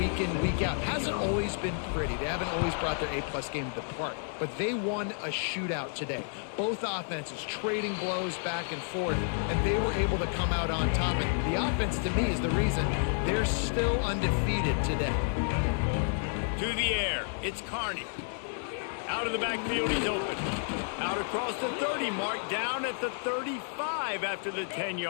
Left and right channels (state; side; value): silent; right; 57 dB below the other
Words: in, week out. Hasn't always been pretty. They haven't always brought their A-plus game to the park. But they won a shootout today. Both offenses trading blows back and forth, and they were able to come out on top. And the offense, to me, is the reason they're still undefeated today. To the air, it's Carney. Out of the backfield, he's open. Out across the 30 mark, down at the 35 after the